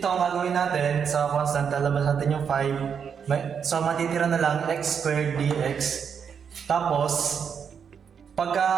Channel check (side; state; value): left; quieter; 7.1 dB